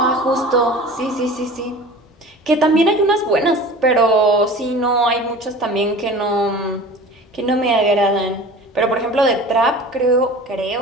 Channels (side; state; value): both; normal; correlation 0.39